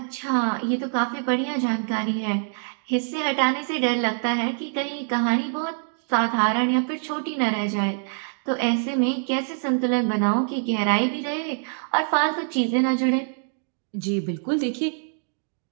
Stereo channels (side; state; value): left; silent; 62 dB below the other